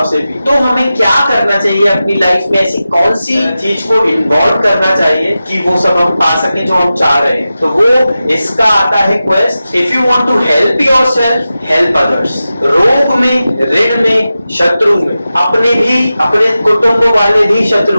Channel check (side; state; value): both; inverted; correlation -0.93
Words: से भी, तो हमें क्या करना चाहिए अपनी लाइफ में? ऐसी कौन सी चीज को इन्वॉल्व करना चाहिए कि वो सब हम पा सके जो हम चाह रहे हैं? तो वो इसका आता है quest. If you want to help yourself, help others. रोग में, ऋण में, शत्रु में, अपने भी, अपने कुटुंब वाले भी